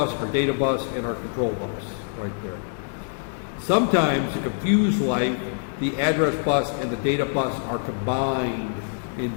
our data bus, and our control bus right there. Sometimes, to confuse life, the address bus and the data bus are combined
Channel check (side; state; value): right; silent; digital silence